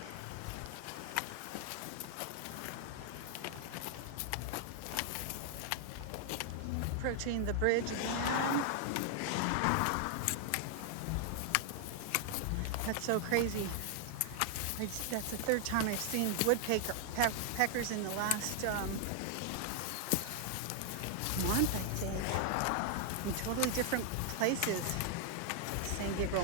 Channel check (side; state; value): both; different; correlation 0.00